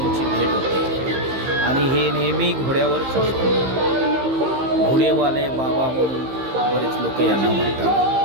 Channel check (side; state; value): left; late; 15 ms